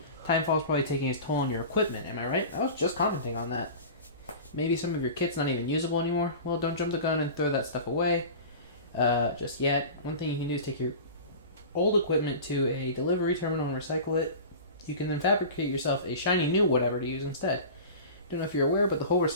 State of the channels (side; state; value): both; inverted; correlation -0.35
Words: Timefall's probably taking its toll on your equipment, am I right? I was just commenting on that. Maybe some of your kit's not even usable anymore? Well, don't jump the gun and throw that stuff away just yet. One thing you can do is take your old equipment to a delivery terminal and recycle it. You can then fabricate yourself a shiny new whatever to use instead. Don't know if you're aware, but the whole